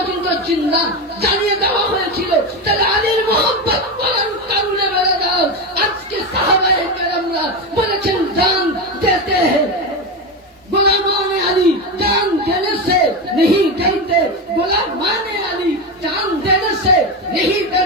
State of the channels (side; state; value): both; normal; correlation 0.16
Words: বলেছেন না, জানিয়ে দেওয়া হয়েছিল তাহলে আলীর মোহাম্মত করার কারণে বেড়ে দাও। আজকে সাহাবায়ে কেরামরা বলেছেন জান দেতে हैं गुलामान अली जान देने से नहीं डरते, गुलामान अली जान देने से नहीं